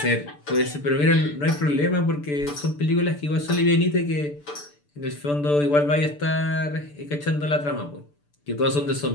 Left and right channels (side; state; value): right; late; 6.8 ms